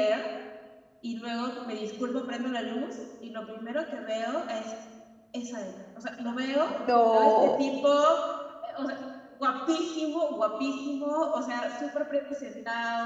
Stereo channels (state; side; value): identical; both; correlation 1.00